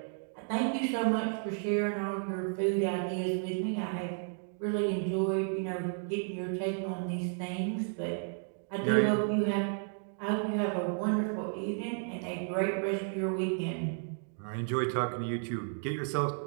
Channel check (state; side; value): silent; left; 56 dB below the other